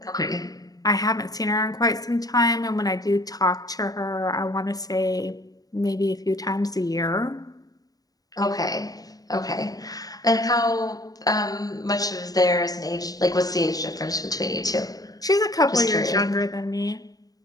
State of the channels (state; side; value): late; right; 0.18 ms